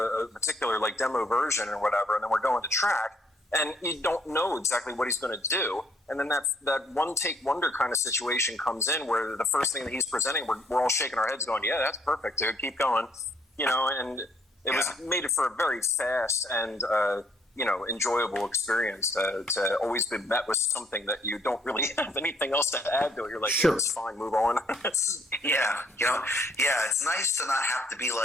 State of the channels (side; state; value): both; normal; correlation 0.66